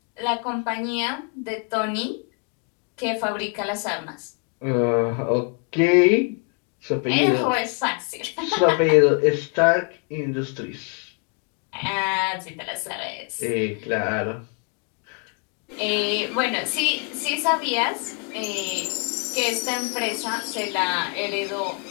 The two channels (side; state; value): right; quieter; 35.8 dB